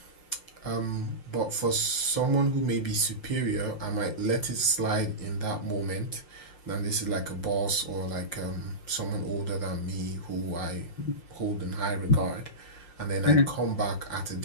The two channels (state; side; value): late; right; 5.6 ms